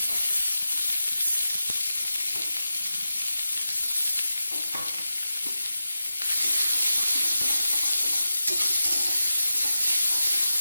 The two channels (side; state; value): both; inverted; correlation -0.91